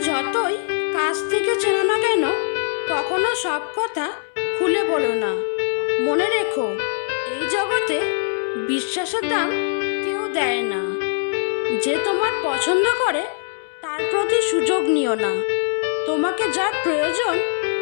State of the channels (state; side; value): silent; right; 62 dB below the other